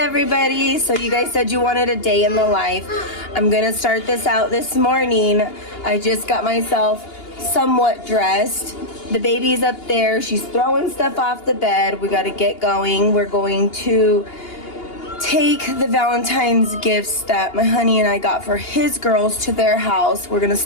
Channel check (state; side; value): late; right; 2.8 ms